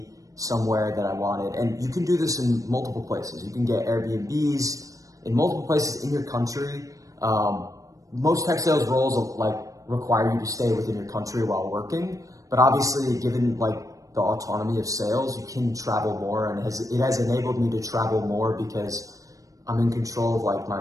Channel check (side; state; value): left; late; 0.16 ms